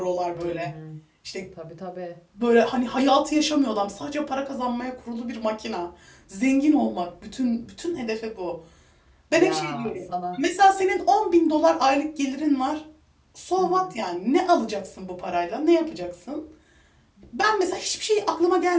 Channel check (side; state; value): both; identical; correlation 1.00